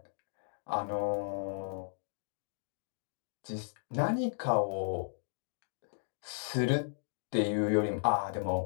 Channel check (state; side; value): silent; right; digital silence